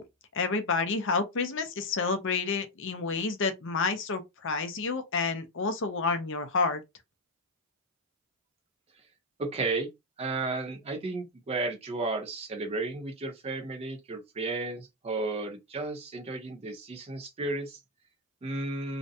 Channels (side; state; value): both; normal; correlation 0.04